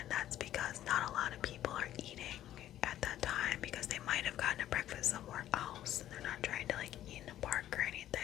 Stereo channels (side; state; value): right; quieter; 12.5 dB